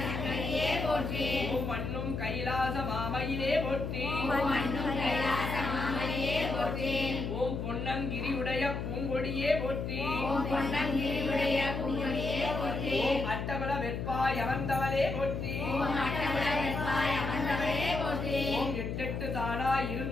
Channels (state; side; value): noise; left; hum, 4 dB below the sound